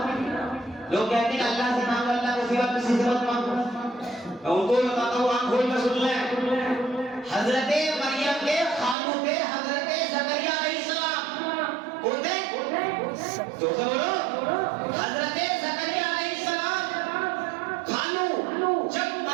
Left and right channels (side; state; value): left; drops out; at 9.0 s